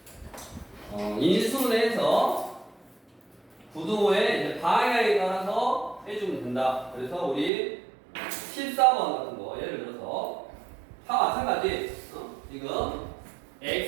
인수분해해서 부등호의 이제 방향에 따라서 해주면 된다. 그래서 우리 14번 같은 거 예를 들어서 다 마찬가지. 지금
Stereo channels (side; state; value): left; drops out; at 7.5 s